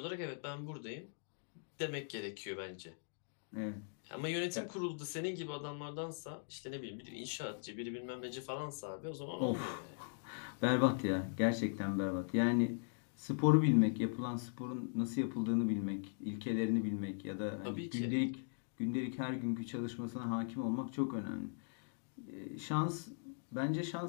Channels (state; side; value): silent; right; digital silence